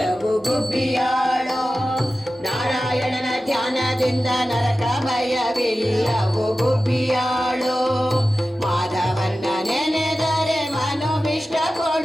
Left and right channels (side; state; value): both; normal; correlation 0.94